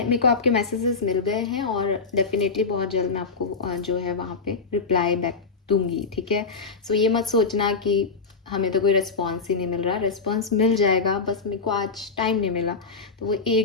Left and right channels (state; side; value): quieter; right; 4.5 dB